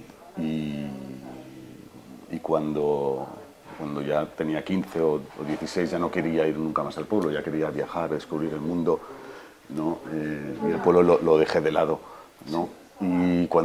cuando ya tenía 15 o 16 ya no quería ir nunca más al pueblo, ya quería viajar, descubrir el mundo, ¿no? Y el pueblo lo dejé de lado, ¿no? Y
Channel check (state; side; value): identical; both; correlation 1.00